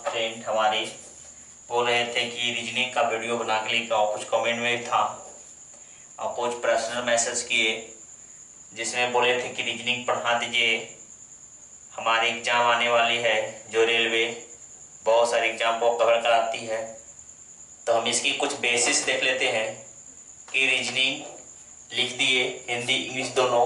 फ्रेंड हमारे बोल रहे थे कि रीजनिंग का वीडियो बना के लेकर आओ। कुछ कमेंट में था और कुछ पर्सनल मैसेज किए जिसमें बोले थे कि रीजनिंग पढ़ा दीजिए, हमारी एग्ज़ाम आने वाली है जो रेलवे बहुत सारे एग्ज़ाम को कवर कराती है। तो हम इसकी कुछ बेसिस देख लेते हैं कि रीजनिंग लिख दिए, हिंदी इंग्लिश दोनों।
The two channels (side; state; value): both; identical; correlation 1.00